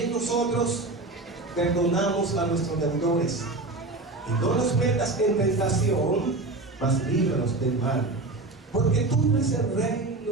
nosotros perdonamos a nuestros deudores. Y no nos metas en tentación, mas líbranos del mal. Porque tú eres el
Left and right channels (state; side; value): quieter; left; 3.2 dB